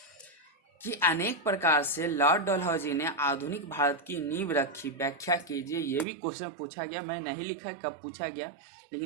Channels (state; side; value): drops out; left; at 6.1 s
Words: कि अनेक प्रकार से लॉर्ड डलहौजी ने आधुनिक भारत की नींव रखी, व्याख्या कीजिए। ये भी क्वेश्चन पूछा गया, मैं नहीं लिखा कब पूछा गया,